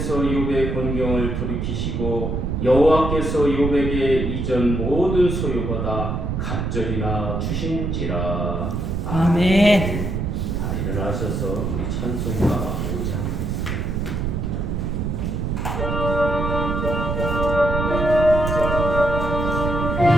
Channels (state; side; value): noise; right; rumble, 1 dB below the sound